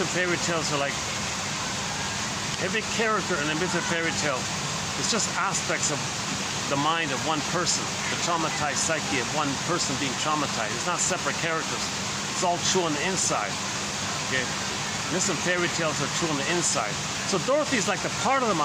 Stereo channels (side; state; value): both; identical; correlation 1.00